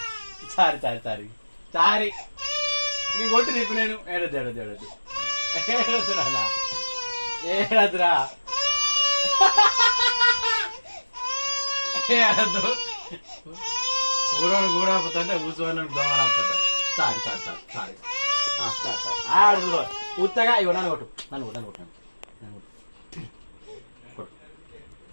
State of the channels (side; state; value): both; inverted; correlation -1.00